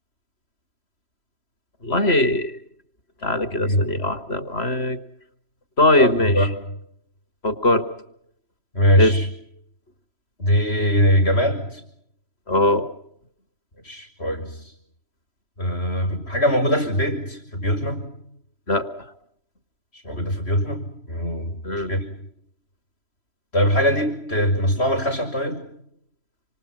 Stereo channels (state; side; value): late; right; 3.0 ms